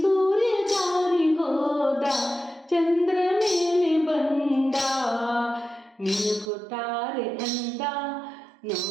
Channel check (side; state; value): left; drops out; at 6.5 s